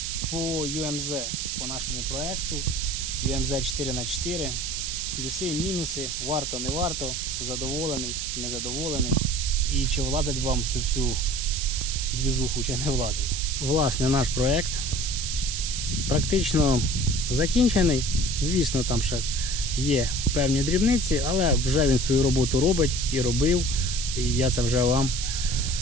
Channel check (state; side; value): noise; right; hiss, 3 dB below the sound